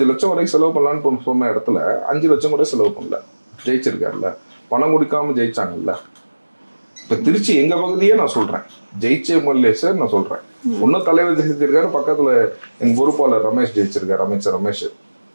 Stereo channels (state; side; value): inverted; both; correlation -1.00